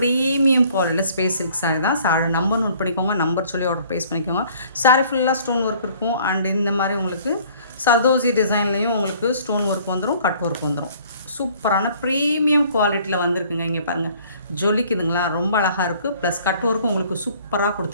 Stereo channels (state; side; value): inverted; both; correlation -0.55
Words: குவாலிட்டியில் ஸ்பேஸ் சில்க் சாரீ தான். சாரி நம்பர் நோட் பண்ணிக்கோங்க. நம்பர் சொல்லி ஆர்டர் ப்ளேஸ் பண்ணிக்கோங்க. சாரீ ஃபுல்லாக ஸ்டோன் ஒர்க் இருக்கும். அண்ட் இந்த மாதிரி உங்களுக்கு சர்தோசி டிசைன்லேயும் உங்களுக்கு ஸ்டோன் ஒர்க் வந்துடும், கட் ஒர்க் வந்துடும். சூப்பரான ப்ரீமியம் குவாலிட்டியில் வந்திருக்குங்க. இங்கே பாருங்கள், ஜொலிக்குதுங்களா, ரொம்ப அழகாக இருக்குது. ப்ளஸ் கட் ஒர்க்கும் உங்களுக்கு சூப்பராக